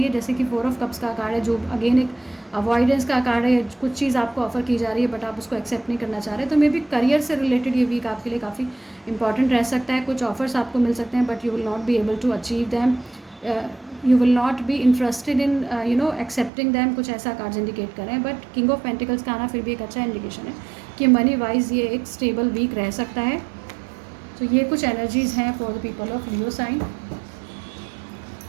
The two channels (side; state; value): left; drops out; at 16.5 s